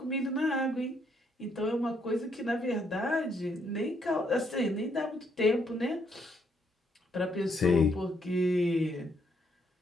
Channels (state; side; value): normal; both; correlation 0.73